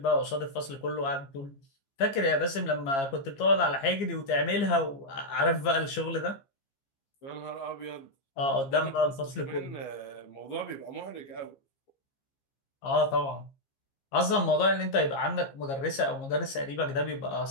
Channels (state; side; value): late; right; 15 ms